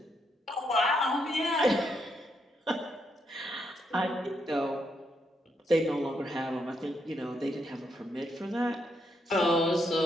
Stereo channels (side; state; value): both; normal; correlation 0.78